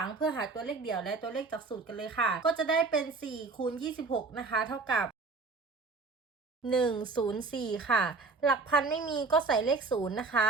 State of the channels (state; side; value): quieter; left; 4.1 dB